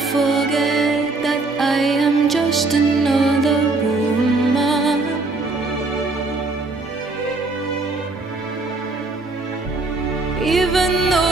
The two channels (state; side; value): quieter; left; 3.5 dB